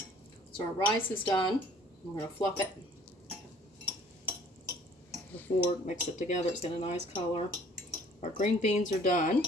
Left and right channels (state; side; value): normal; both; correlation 0.55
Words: So our rice is done. We're going to fluff it. Before mix it together, it's got a nice color. Our green beans are done.